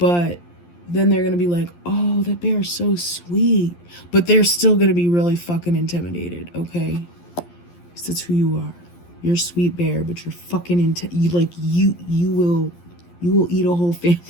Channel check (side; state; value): right; late; 11 ms